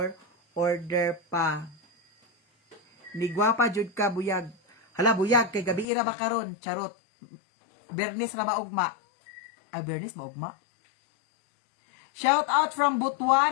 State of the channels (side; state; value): right; drops out; at 5.9 s